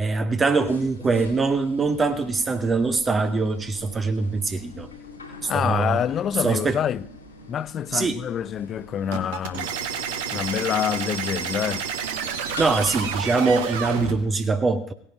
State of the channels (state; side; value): normal; both; correlation 0.69